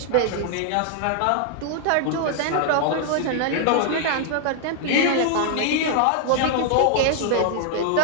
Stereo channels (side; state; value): both; different; correlation 0.00